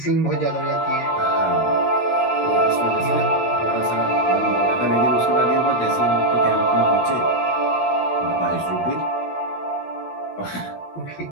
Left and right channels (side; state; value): right; late; 16 ms